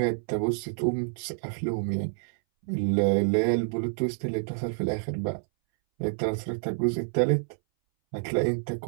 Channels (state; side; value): silent; left; 59 dB below the other